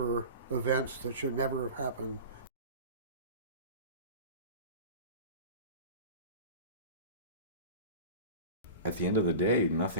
events that should never have happened. At the end of the day,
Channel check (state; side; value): inverted; both; correlation -0.34